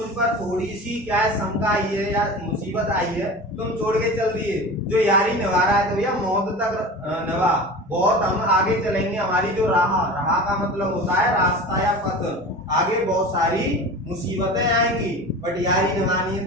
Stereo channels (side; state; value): both; normal; correlation 0.34